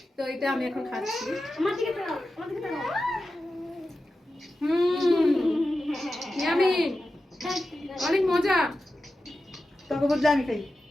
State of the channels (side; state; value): both; normal; correlation 0.92